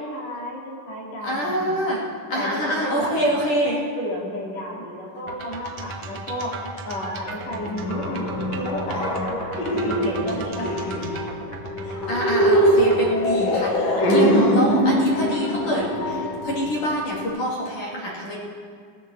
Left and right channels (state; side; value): late; right; 10 ms